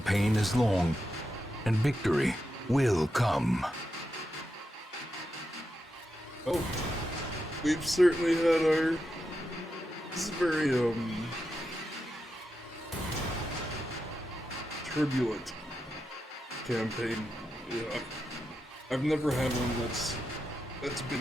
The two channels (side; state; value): both; normal; correlation 0.87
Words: is long, and victory will come. Oh. We've certainly had our... This is very, turbulent campaign. Yeah. I've never had one that's